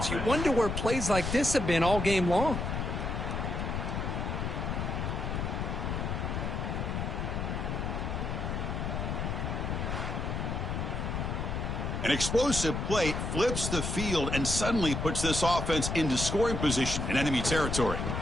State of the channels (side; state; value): left; noise; rumble, 2 dB below the sound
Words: You wonder where plays like this have been all game long. An explosive play flips the field and suddenly puts this offense into scoring position in enemy territory.